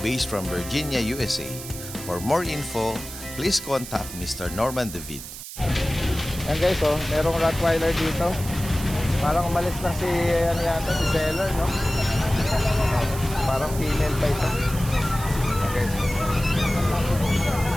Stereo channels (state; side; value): noise; right; hiss, 11 dB below the sound